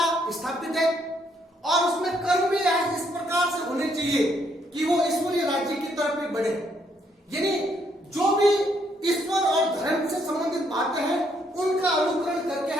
स्थापित है और उसमें कर्म भी इस प्रकार से होने चाहिए कि वो ईश्वरीय राज्य की तरफ भी बढ़े। यानी जो भी ईश्वर और धर्म से संबंधित बातें हैं उनका अनुकरण करके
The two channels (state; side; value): normal; both; correlation 0.71